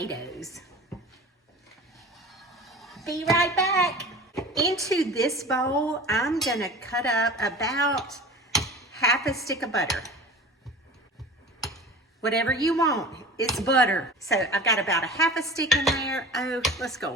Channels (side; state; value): both; normal; correlation 0.38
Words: Be right back. Into this bowl, I'm gonna cut up about half a stick of butter. Whatever you want, it's butter. So I've got about a half a stick in there. Oh, let's go a